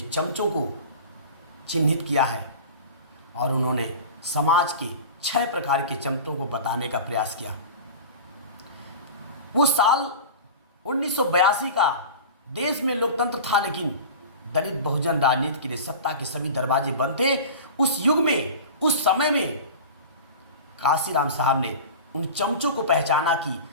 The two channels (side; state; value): both; inverted; correlation -0.35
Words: चमचों को चिन्हित किया है और उन्होंने समाज के 6 प्रकार के चमचों को बताने का प्रयास किया। वो साल 1982 का, देश में लोकतंत्र था लेकिन दलित बहुजन राजनीति के लिए सत्ता के सभी दरवाजे बंद थे। उस युग में, उस समय में काशीराम साहब ने उन चमचों को पहचाना कि